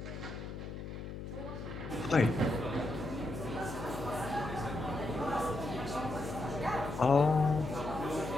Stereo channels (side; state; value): left; noise; hum, 8 dB below the sound